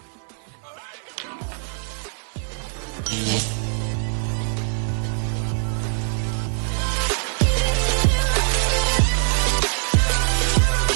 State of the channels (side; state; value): left; silent; digital silence